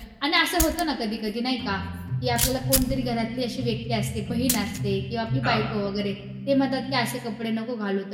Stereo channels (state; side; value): identical; both; correlation 1.00